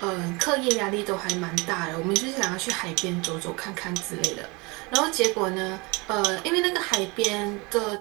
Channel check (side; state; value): left; quieter; 26.9 dB